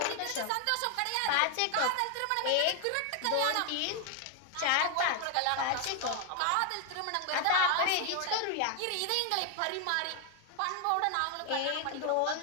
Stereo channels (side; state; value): both; different; correlation 0.01